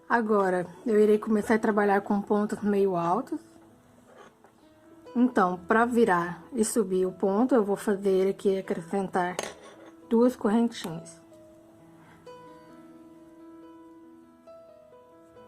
Agora, eu irei começar a trabalhar com pontos meio altos. Então, para virar e subir o ponto, eu vou fazer aqui, acrescentar 2 correntinhas.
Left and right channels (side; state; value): both; identical; correlation 1.00